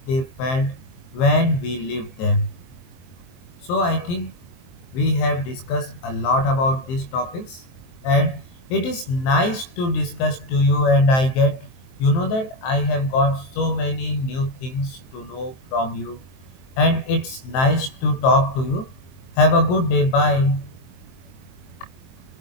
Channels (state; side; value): late; right; 23 ms